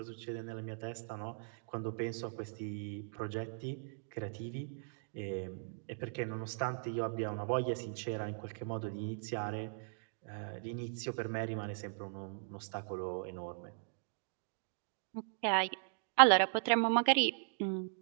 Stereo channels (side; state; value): left; silent; digital silence